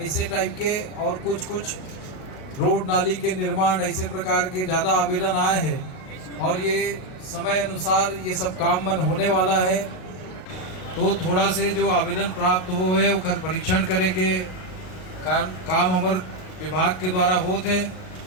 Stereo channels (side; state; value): right; late; 38 ms